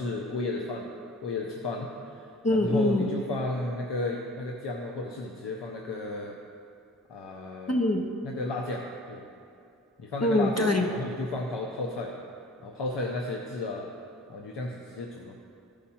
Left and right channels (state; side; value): normal; both; correlation 0.47